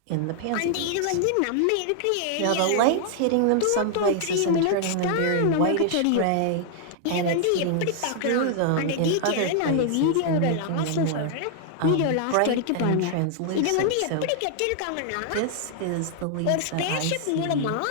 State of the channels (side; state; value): both; different; correlation -0.01